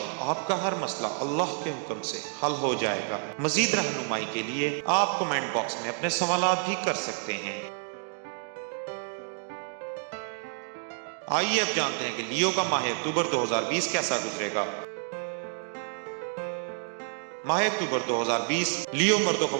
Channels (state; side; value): silent; left; 58 dB below the other